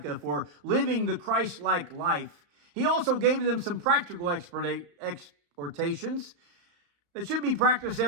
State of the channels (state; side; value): late; left; 34 ms